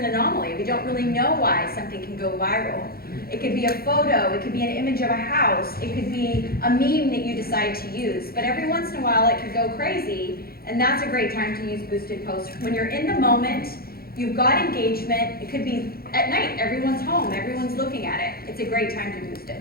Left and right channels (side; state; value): right; late; 0.44 ms